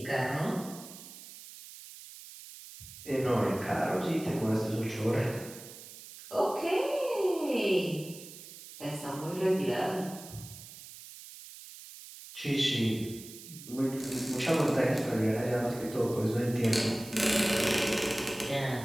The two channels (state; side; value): noise; right; hiss, 15 dB below the sound